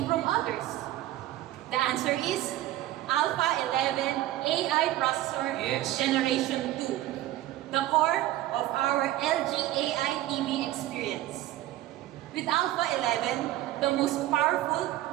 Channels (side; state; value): left; quieter; 15.0 dB